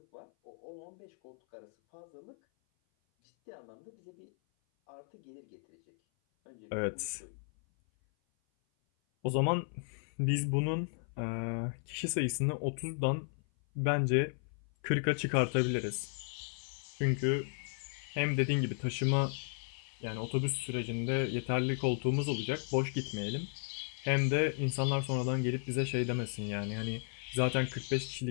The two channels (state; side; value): silent; right; 54 dB below the other